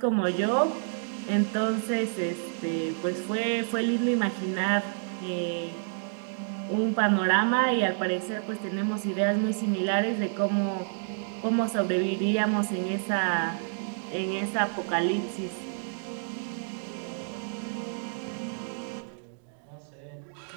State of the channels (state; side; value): silent; left; digital silence